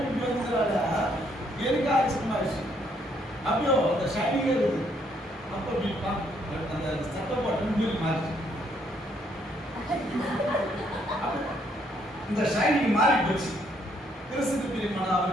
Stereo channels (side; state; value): both; normal; correlation 0.70